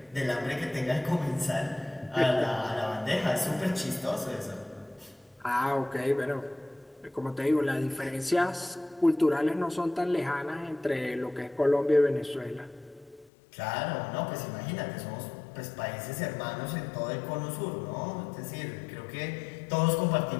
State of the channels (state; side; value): drops out; right; at 13.3 s